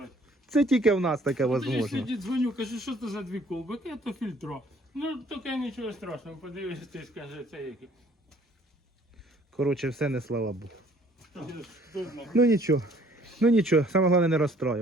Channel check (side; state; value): both; normal; correlation 0.59